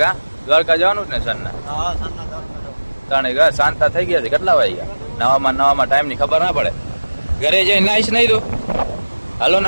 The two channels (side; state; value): both; inverted; correlation -1.00